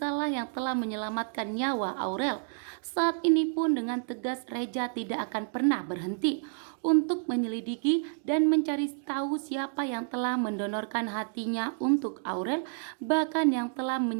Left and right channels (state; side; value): silent; left; digital silence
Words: lah yang telah menyelamatkan nyawa Aurel. Saat ini pun dengan tegas Reja tidak akan pernah berhenti untuk menyelidiki dan mencari tahu siapa yang telah mendonorkan hatinya untuk Aurel, bahkan yang telah